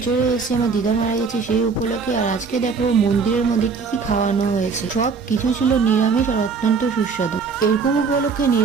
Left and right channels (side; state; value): left; quieter; 5.2 dB